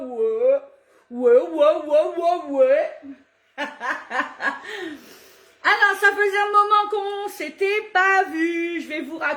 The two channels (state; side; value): identical; both; correlation 1.00